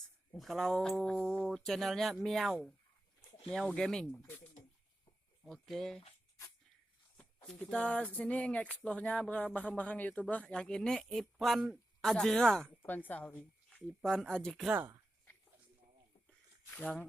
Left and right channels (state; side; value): normal; both; correlation 0.91